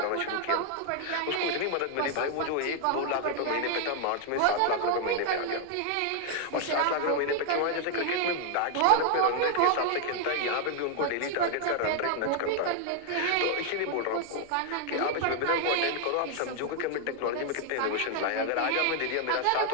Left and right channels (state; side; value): different; both; correlation 0.00